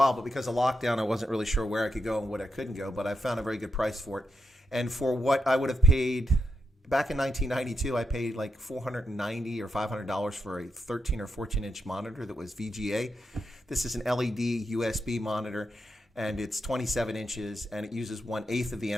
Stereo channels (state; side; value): normal; both; correlation 0.84